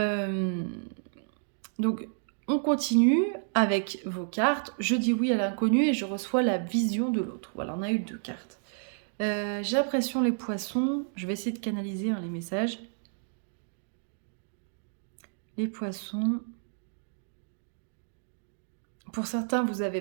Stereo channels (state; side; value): silent; left; digital silence